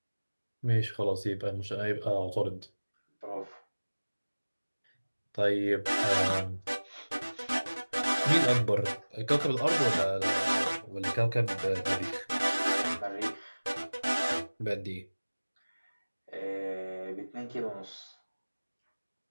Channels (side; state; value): both; inverted; correlation -1.00